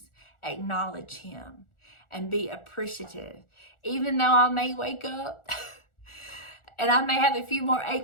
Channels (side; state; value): right; late; 1.4 ms